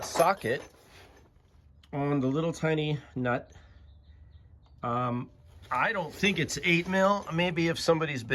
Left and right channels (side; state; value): both; identical; correlation 1.00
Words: socket on the little tiny nut. I don't think it's 8 mil. Maybe if somebody's